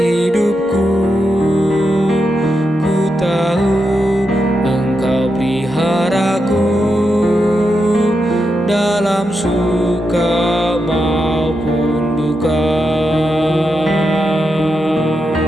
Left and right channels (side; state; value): both; normal; correlation 0.86